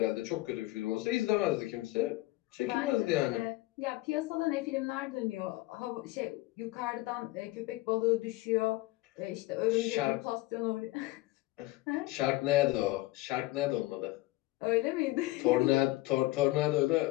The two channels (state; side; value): quieter; right; 19.4 dB